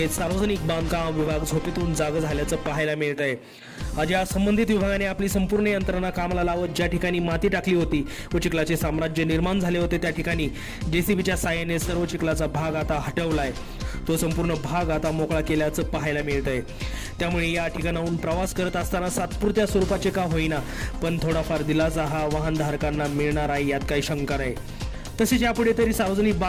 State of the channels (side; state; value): both; identical; correlation 1.00